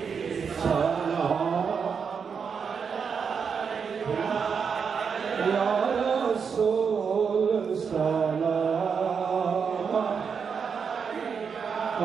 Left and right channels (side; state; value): left; quieter; 6.2 dB